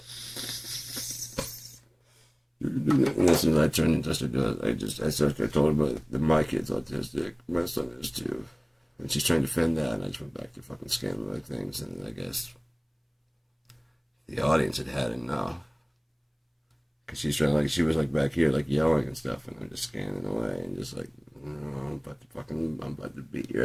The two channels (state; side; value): identical; both; correlation 1.00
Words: And as soon as I turned and touched her, I told her that my kid's autistic. My son is too. And she's trying to defend that, and I just went back to fucking scanning like things, and I guess the audience had enough. Cause she was like back here, like yelling and stuff, and I'm just scanning away and just like, I'm about to beat